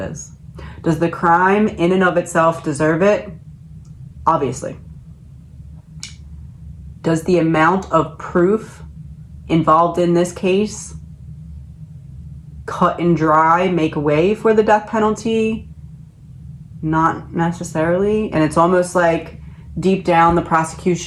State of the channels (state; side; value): identical; both; correlation 1.00